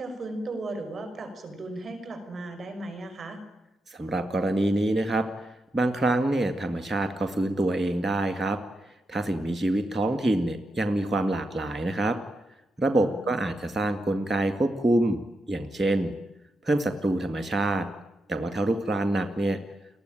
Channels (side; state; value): both; normal; correlation 0.86